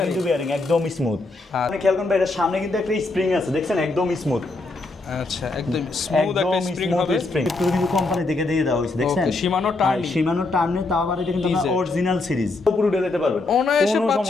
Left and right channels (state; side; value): quieter; right; 3.3 dB